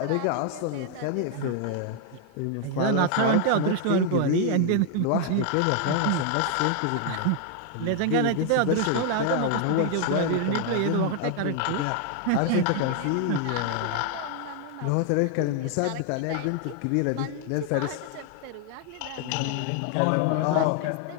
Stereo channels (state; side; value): different; both; correlation 0.00